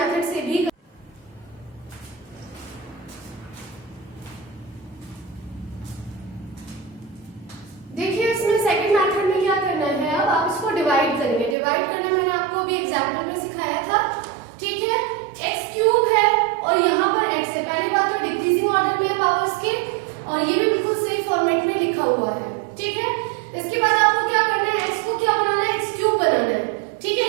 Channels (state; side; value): drops out; left; at 11.6 s